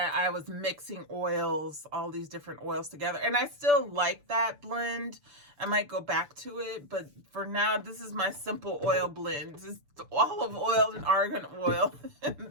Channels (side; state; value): left; late; 6.9 ms